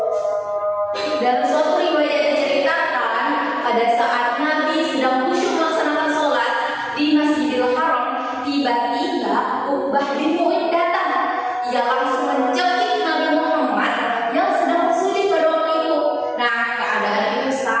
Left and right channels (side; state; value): both; identical; correlation 1.00